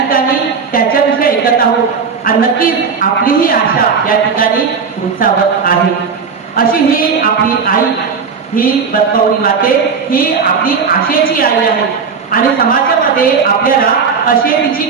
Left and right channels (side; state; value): left; quieter; 5.7 dB